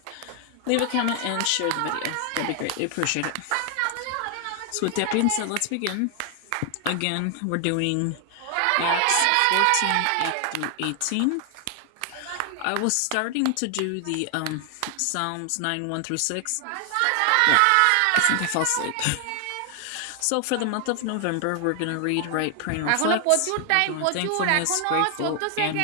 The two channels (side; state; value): both; different; correlation 0.00